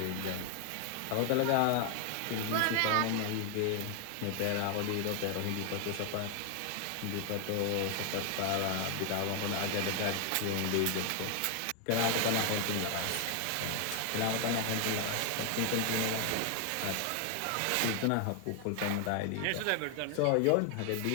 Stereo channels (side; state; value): both; different; correlation 0.00